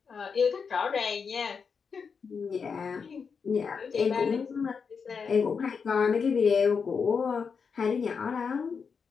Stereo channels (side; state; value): right; quieter; 5.8 dB